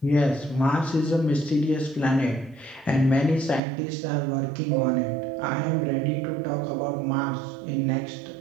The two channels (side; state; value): left; drops out; at 3.6 s